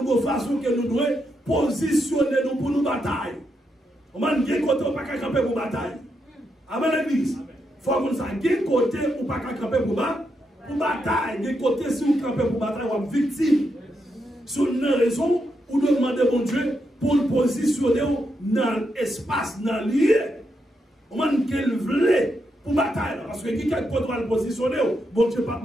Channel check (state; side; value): normal; both; correlation 0.82